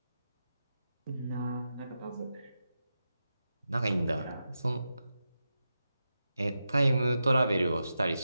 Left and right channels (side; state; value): both; inverted; correlation -0.90